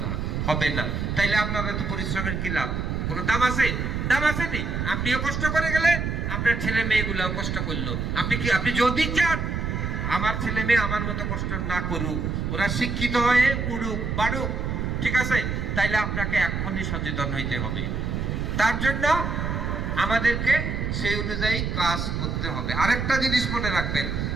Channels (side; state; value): right; noise; rumble, 2 dB below the sound